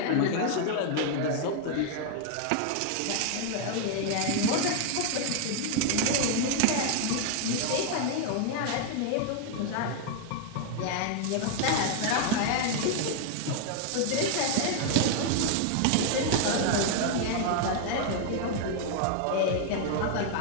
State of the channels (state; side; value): different; both; correlation 0.00